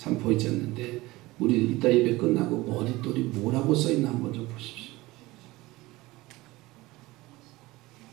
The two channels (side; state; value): left; quieter; 20.0 dB